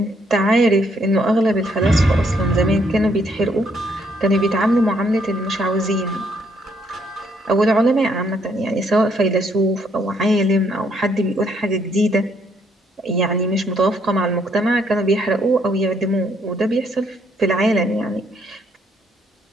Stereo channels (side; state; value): both; normal; correlation 0.70